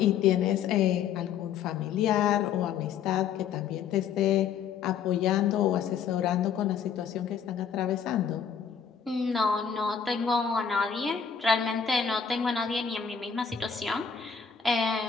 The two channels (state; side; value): quieter; right; 7.2 dB